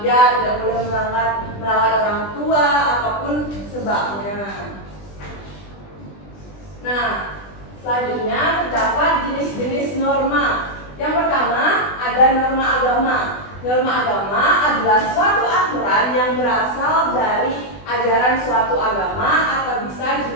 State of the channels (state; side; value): late; right; 20 ms